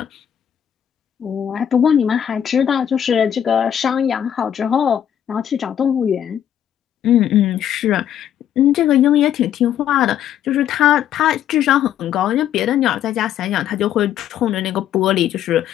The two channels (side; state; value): right; quieter; 10.0 dB